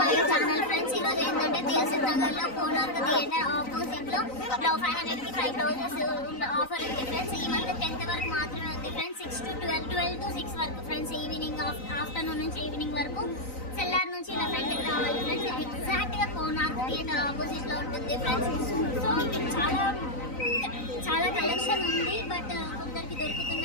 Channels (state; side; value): late; right; 3.9 ms